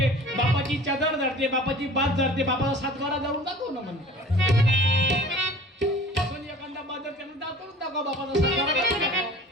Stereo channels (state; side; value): normal; both; correlation 0.44